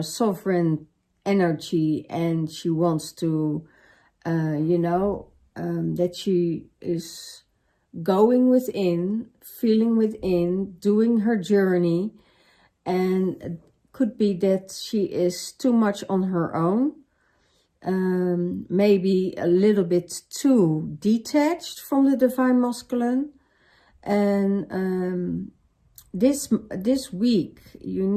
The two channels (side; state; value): both; identical; correlation 1.00